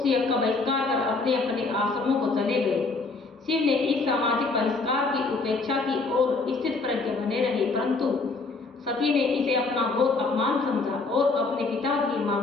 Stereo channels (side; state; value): right; quieter; 3.8 dB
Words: यज्ञ का बहिष्कार कर अपने अपने आश्रमों को चले गए। शिव ने इस सामाजिक बहिष्कार की उपेक्षा की और स्थित प्रज्ञ बने रहे, परंतु सती ने इसे अपना घोर अपमान समझा और अपने पिता के